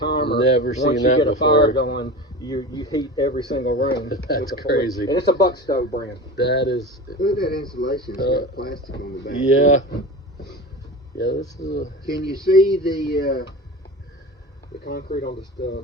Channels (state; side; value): normal; both; correlation 0.30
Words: Never seen once you that get a before. fire going, you heat every single room. That's with the crazy. And it's a Buck Stove brand. That is. Look at that insulation. It's got plastic on the back. Yeah. Yeah, this is. Can you see the concrete on the